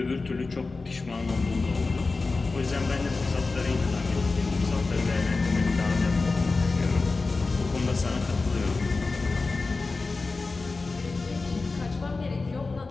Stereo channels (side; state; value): right; quieter; 3.8 dB